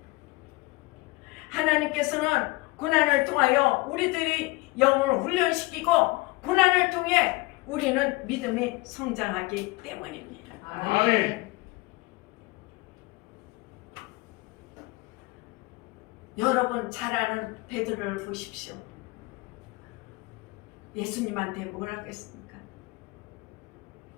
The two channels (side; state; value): right; quieter; 23.1 dB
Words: 하나님께서는 고난을 통하여 우리들이 영을 훈련시키고 고난을 통해 우리는 믿음이 성장하기 때문입니다. 아멘. 여러분 잘 아는 베드로를 보십시오. 예수님한테 뭘 하겠습니까?